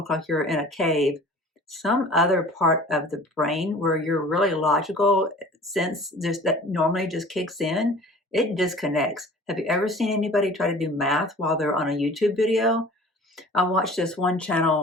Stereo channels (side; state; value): both; normal; correlation 0.45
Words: like you're in a cave, some other part of the brain where you're really logical sense just that normally just kicks in, it disconnects. Have you ever seen anybody try to do math while they're on a YouTube video? I watched this one